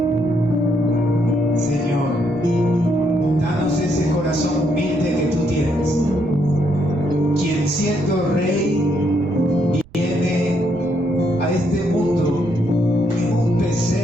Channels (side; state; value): right; noise; rumble, 23 dB below the sound